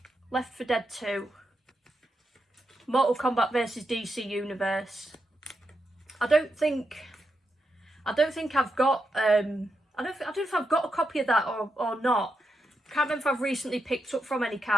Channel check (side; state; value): both; normal; correlation 0.85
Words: Left 4 Dead 2. Mortal Kombat versus DC Universe. I don't think I've got I don't know if I've got a copy of that or not. Can't remember if I've recently picked up from any